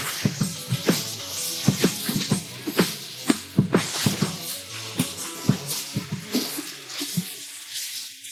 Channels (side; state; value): both; identical; correlation 1.00